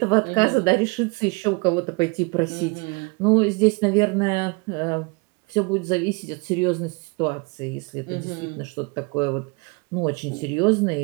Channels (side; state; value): left; quieter; 29.6 dB